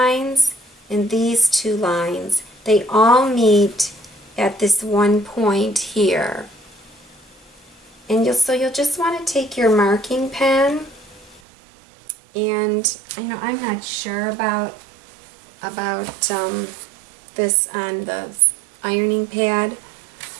and these two lines, they all meet at this one point here. And so you'll just want to take your marking pen, and I know I'm not sure about this on the ironing pad,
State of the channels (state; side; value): drops out; left; at 11.4 s